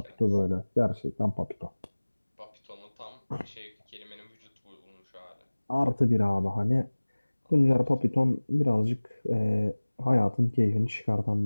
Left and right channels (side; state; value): both; inverted; correlation -1.00